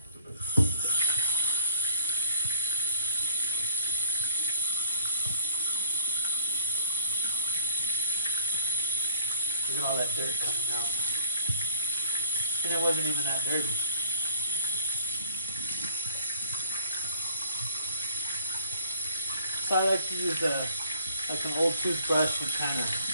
at all that dirt coming out. And it wasn't even that dirty. So I like to use like an old toothbrush and kind of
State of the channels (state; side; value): inverted; both; correlation -0.56